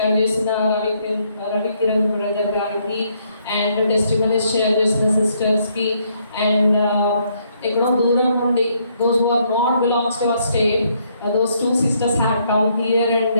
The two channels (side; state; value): both; inverted; correlation -0.71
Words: చేసిన Ravi Kiran brother గారికి, and testimonies share చేసిన సిస్టర్స్కి, అండ్ ఎక్కడో దూరం నుండి those who are not belongs to our state, those two sisters had come here and